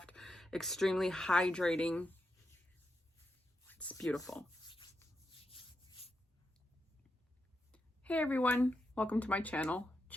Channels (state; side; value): normal; both; correlation 0.85